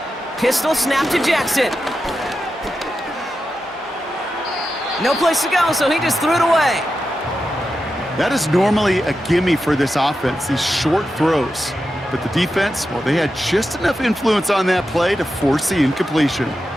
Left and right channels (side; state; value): both; normal; correlation 0.89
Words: Pistol snap to Jackson. No place to go, so he just threw it away. That is normally a gimme for this offense, these short throws. But the defense, well, they had just enough influence on that play to force the incompletion.